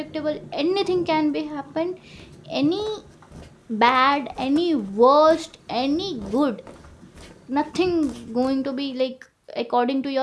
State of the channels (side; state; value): both; identical; correlation 1.00